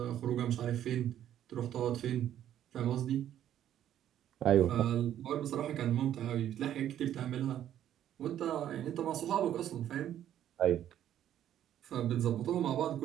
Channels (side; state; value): left; quieter; 11.1 dB